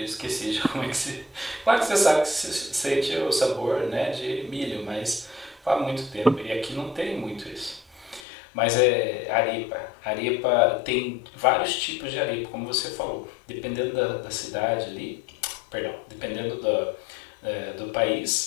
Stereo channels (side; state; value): right; drops out; at 8.2 s